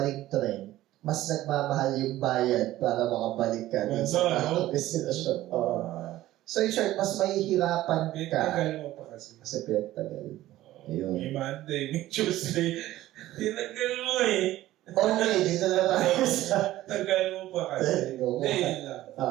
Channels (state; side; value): quieter; left; 15.1 dB